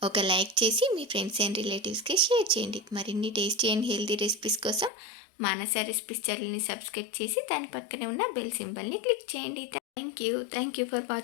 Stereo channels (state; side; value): drops out; right; at 4.9 s